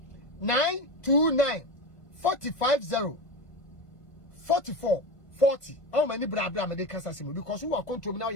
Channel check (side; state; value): right; late; 1.5 ms